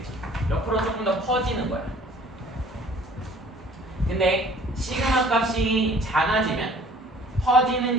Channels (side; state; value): both; normal; correlation 0.52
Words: 옆으로 조금 더 퍼지는 거야. 근데 시그마 값이 작아지면 퍼지는